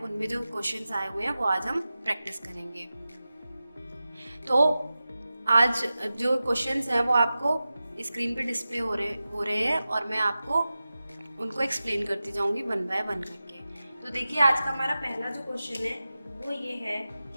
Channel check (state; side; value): inverted; both; correlation -0.94